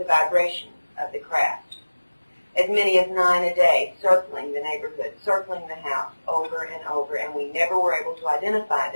vibration of the craft. As many as 9 a day, circling the neighborhood, circling the house over and over, and we never were able to identify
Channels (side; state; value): both; inverted; correlation -1.00